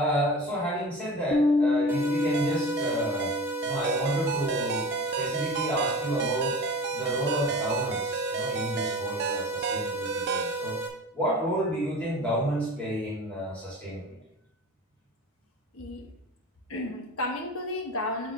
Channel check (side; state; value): both; normal; correlation 0.34